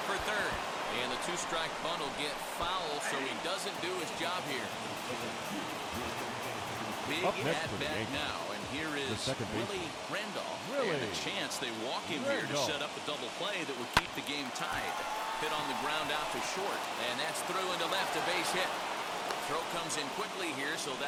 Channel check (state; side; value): identical; both; correlation 1.00